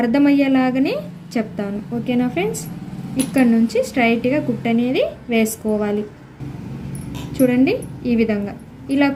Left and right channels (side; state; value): both; identical; correlation 1.00